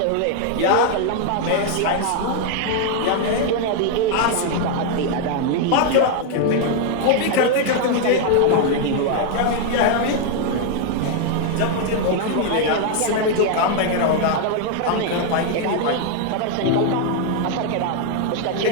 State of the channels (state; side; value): different; both; correlation 0.00